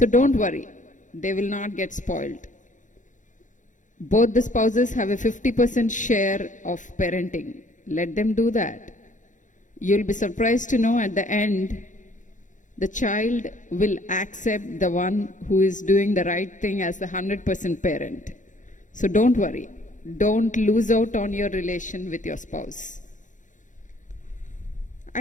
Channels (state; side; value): late; right; 0.37 ms